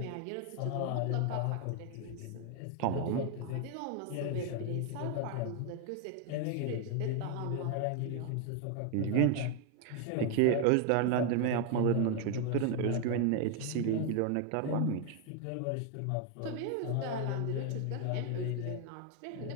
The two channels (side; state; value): both; different; correlation 0.01